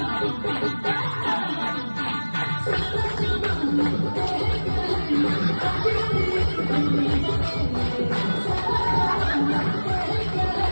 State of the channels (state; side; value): inverted; both; correlation -1.00